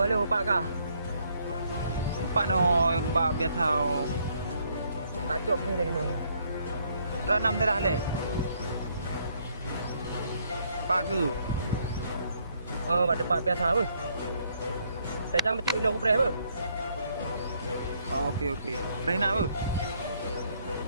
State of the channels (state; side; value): inverted; both; correlation -0.69